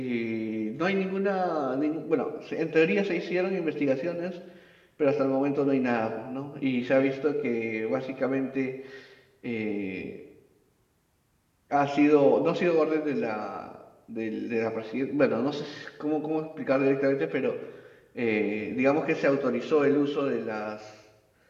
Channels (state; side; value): identical; both; correlation 1.00